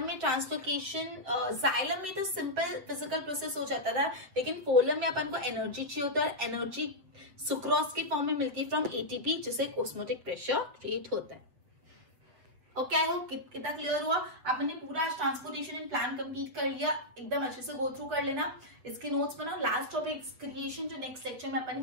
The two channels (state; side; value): late; left; 7.8 ms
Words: में ट्रांसलोकेशन, जाइलम में तो सिंपल फिजिकल प्रोसेस हो जाता था, लेकिन फोलम में अपन को एनर्जी चाहिए होता है. एनर्जी सुक्रोज के फॉर्म में मिलती है फ्रॉम एटीपी, जिससे ऑस्मोटिक प्रेशर क्रिएट होता है. ओके, आई होप कितना क्लियर हुआ. आपने पूरा ट्रांसपोर्टेशन एंड प्लान कंप्लीट कर लिया, एकदम अच्छे से गो थ्रू कर लेना. इसके नोट्स बनाओ. लास्ट टॉपिक क्रिएशन, जो नेक्स्ट लेक्चर में अपन